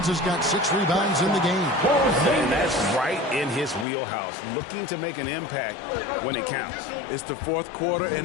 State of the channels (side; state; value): right; drops out; at 3.9 s